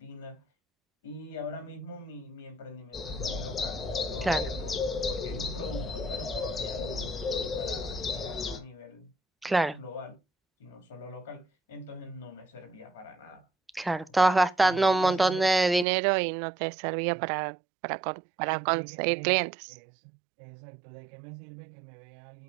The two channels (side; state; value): left; drops out; at 15.9 s